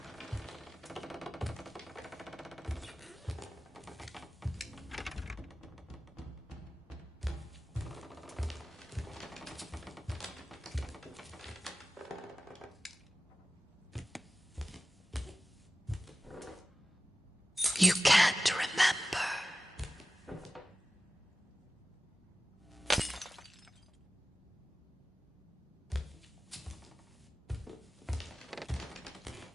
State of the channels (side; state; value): both; normal; correlation 0.96